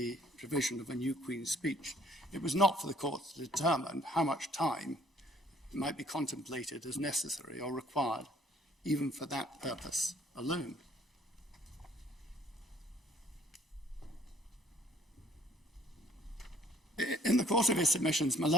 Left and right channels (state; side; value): normal; both; correlation 0.58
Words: provision of a new Queen's speech, it was not for the court to determine how much time might be contemplated as necessary or required, even for that purpose alone. In the course of his submissions, my